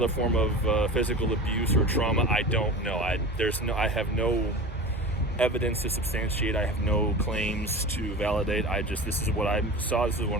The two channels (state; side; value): normal; both; correlation 0.32